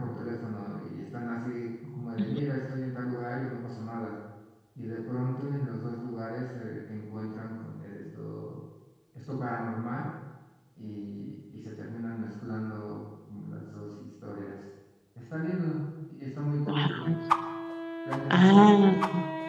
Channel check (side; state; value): both; identical; correlation 1.00